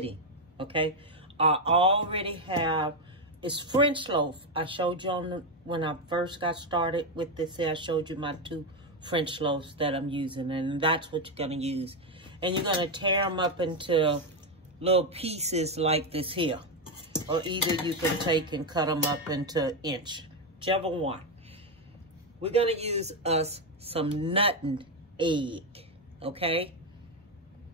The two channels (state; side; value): normal; both; correlation 0.06